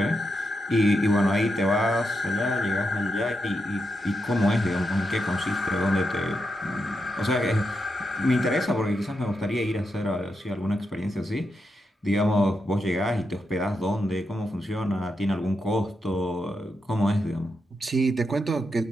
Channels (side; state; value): both; normal; correlation 0.85